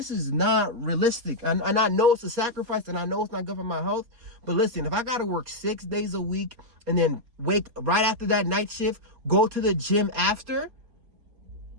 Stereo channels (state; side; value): late; left; 4.3 ms